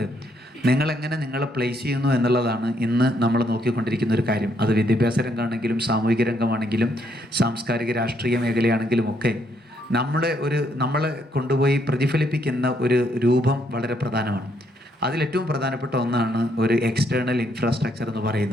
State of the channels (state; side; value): normal; both; correlation 0.72